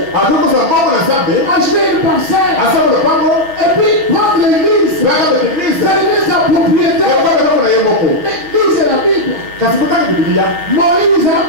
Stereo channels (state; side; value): late; left; 6.1 ms